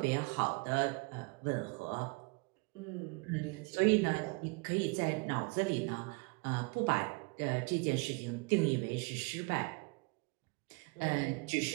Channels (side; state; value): left; quieter; 29.5 dB